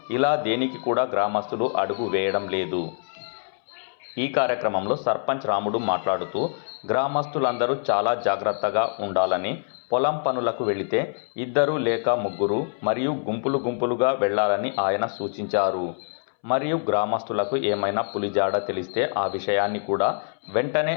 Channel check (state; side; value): silent; right; 62 dB below the other